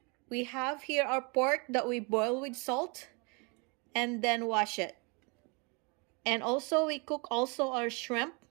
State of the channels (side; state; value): left; quieter; 31.6 dB